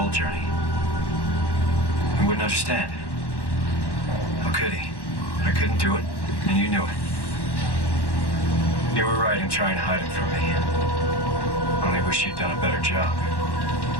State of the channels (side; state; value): right; late; 1.1 ms